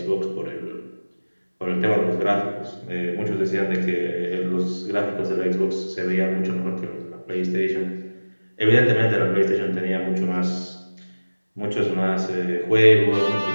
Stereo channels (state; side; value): inverted; both; correlation -1.00